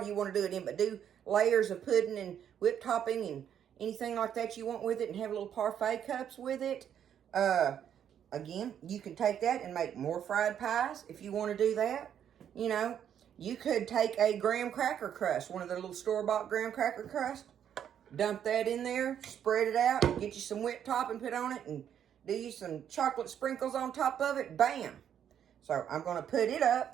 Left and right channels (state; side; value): quieter; left; 9.3 dB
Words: you want to do it in, but do layers of pudding and whipped topping and anything like that you want with it and have little parfait cups with it. Again, you can take that and make more fried pies if you want to do that. You could take a graham cracker crust, one of the little store-bought graham cracker crust, dump that in there, spread it out, get you some whipped topping put on it, and do you some chocolate sprinkles on top of it. Bam! So I'm going to put it